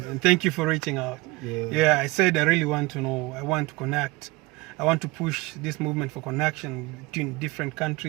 and thank you for reaching out. Yeah, I said I really want to know. I want to connect. I want to push this movement for connection between different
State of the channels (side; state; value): left; quieter; 22.7 dB